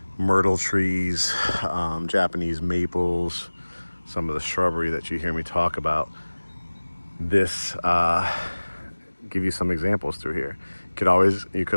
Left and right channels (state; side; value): inverted; both; correlation -1.00